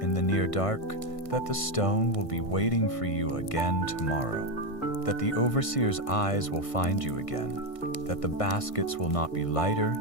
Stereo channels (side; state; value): right; late; 1.5 ms